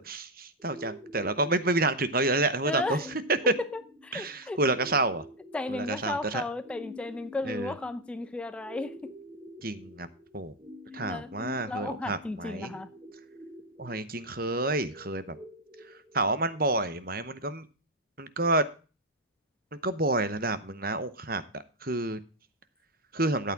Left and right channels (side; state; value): both; normal; correlation 0.03